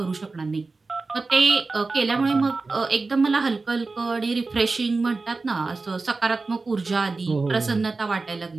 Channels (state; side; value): quieter; left; 3.8 dB